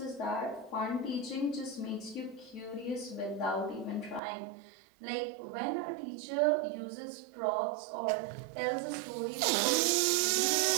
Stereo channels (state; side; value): drops out; left; at 4.2 s